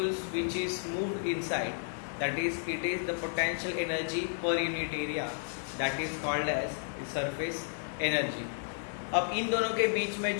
which is moved inside, that is it is the potential energy per unit area that is called as the surface energy। अब इन दोनों के बीच में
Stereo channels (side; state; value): right; silent; digital silence